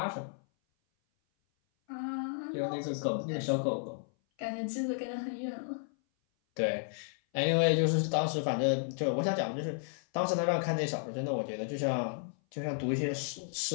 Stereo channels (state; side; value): silent; right; 56 dB below the other